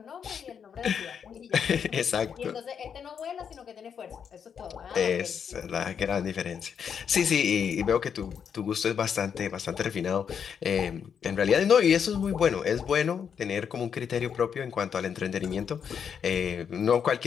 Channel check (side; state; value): right; quieter; 7.4 dB